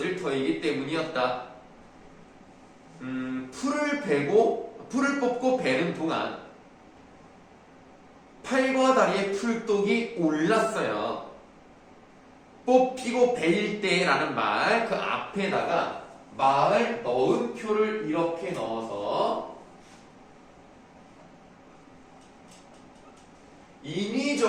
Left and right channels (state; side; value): identical; both; correlation 1.00